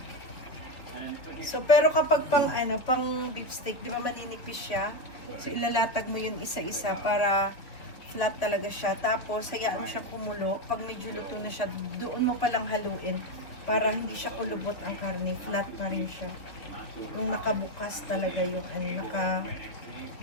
So, pero kapag pang beef steak, di ba maninipis siya? So, ilalatag mo yun isa-isa para flat talaga siya. Tapos, hayaan mo siya kumulo. Pag medyo luto na siya, doon mo palang haluin para hindi siya kulubot ang karne. Flat pa rin siya. Yung nakabukas talaga yung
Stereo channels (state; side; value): late; right; 3.9 ms